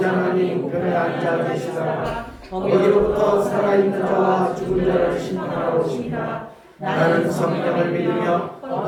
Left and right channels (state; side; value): identical; both; correlation 1.00